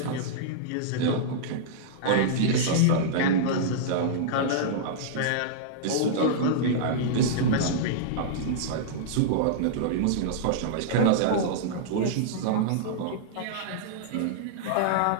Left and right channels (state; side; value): different; both; correlation -0.02